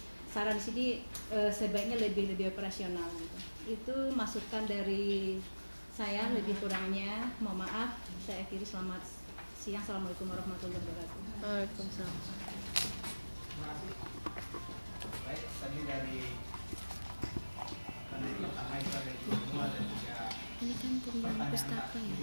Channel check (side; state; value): both; inverted; correlation -1.00